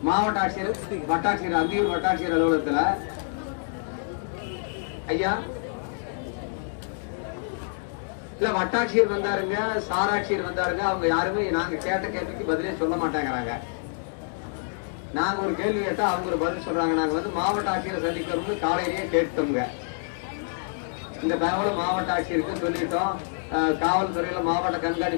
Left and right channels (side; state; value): right; silent; digital silence